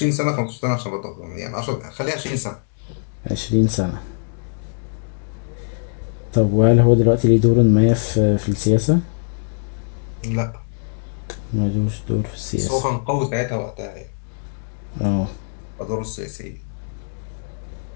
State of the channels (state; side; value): silent; right; digital silence